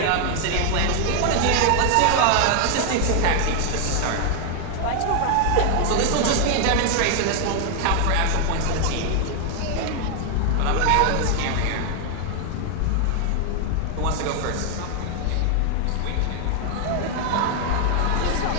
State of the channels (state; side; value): different; both; correlation 0.00